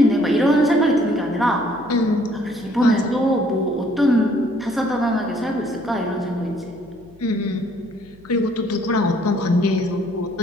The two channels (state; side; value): noise; left; hum, 26 dB below the sound